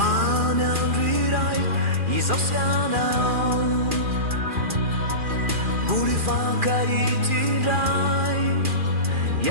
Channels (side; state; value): left; late; 2.4 ms